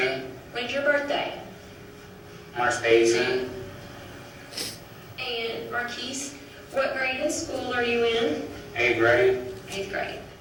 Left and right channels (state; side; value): identical; both; correlation 1.00